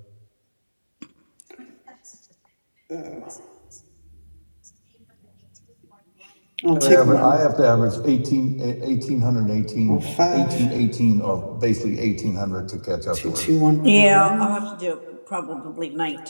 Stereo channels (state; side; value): inverted; both; correlation -1.00